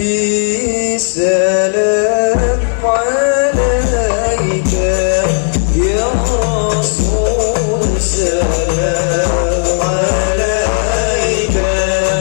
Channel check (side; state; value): right; silent; digital silence